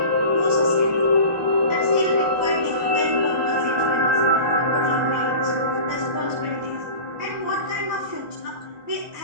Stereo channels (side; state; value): left; late; 1.1 ms